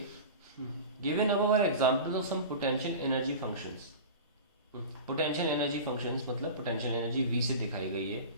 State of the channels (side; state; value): both; inverted; correlation -0.32